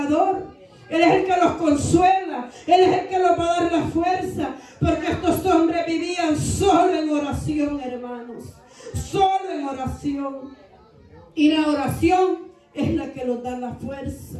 Él es el que los consuela. Él es el que los va a dar la fuerza. Porque estos hombres vivían solo en oración, hermanos. Solo en oración. Y la oración es la que nos da la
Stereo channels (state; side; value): identical; both; correlation 1.00